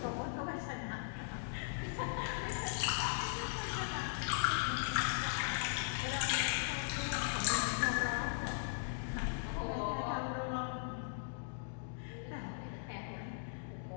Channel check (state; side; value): silent; right; digital silence